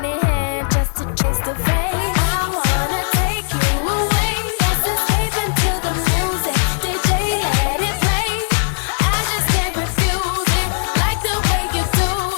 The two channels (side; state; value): right; silent; digital silence